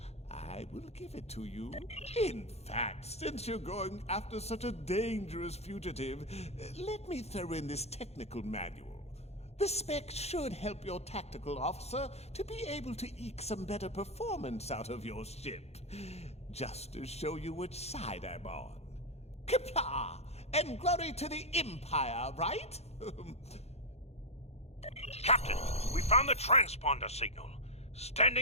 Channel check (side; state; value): right; late; 0.31 ms